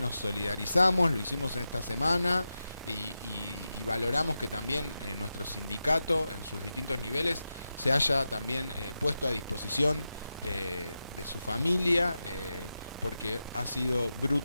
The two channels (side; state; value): both; inverted; correlation -0.91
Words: solidarizamos, lo hicimos en esta semana y valoramos que también nuestro sindicato en sus distintos niveles se haya también puesto a disposición de su familia, porque ha sido